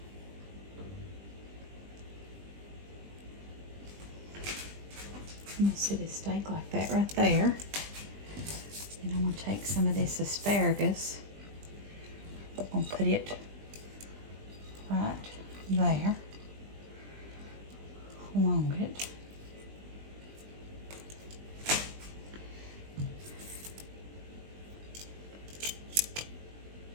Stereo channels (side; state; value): left; late; 20 ms